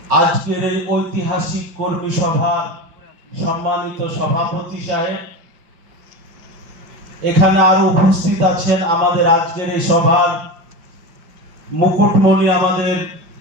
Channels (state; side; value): late; left; 5.6 ms